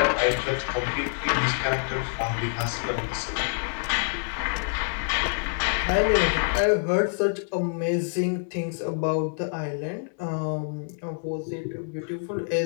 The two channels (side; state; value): right; silent; 60 dB below the other